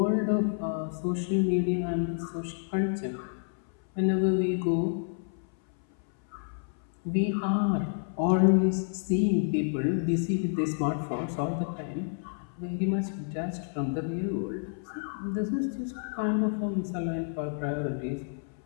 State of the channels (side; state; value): right; silent; 58 dB below the other